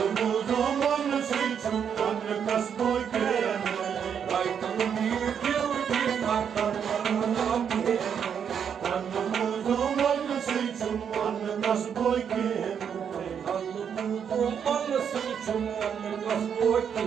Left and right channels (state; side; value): quieter; left; 7.7 dB